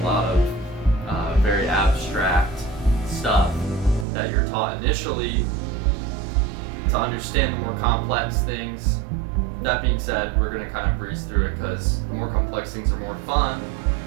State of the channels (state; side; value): drops out; left; at 4.0 s